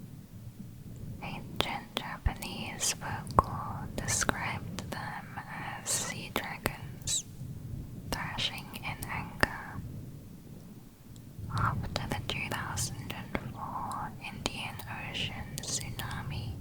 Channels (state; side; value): identical; both; correlation 1.00